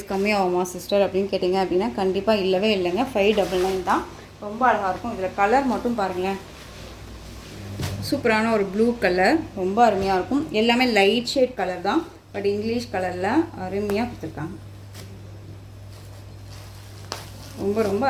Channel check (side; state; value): both; identical; correlation 1.00